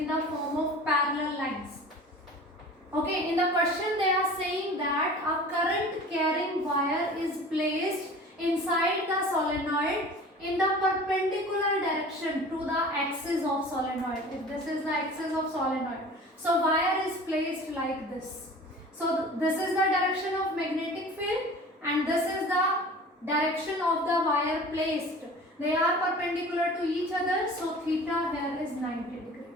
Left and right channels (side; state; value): both; normal; correlation 0.42